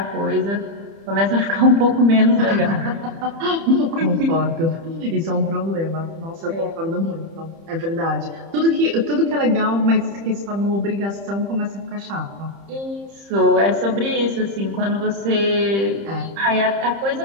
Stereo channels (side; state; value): left; late; 30 ms